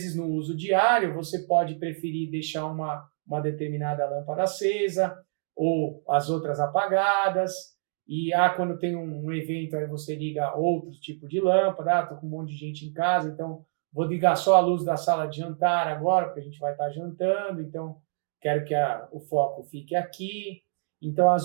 no uso diário, você pode preferir deixar uma determinada lâmpada acesa ou as outras apagadas. E quando tem um evento, aí você liga outro tipo de lâmpada. Estou com um monte de gente em casa, então vou ligar só a luz da sala de jantar agora, porque a gente vai estar jantando, então quero que o foco fique aqui. Então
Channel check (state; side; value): silent; left; digital silence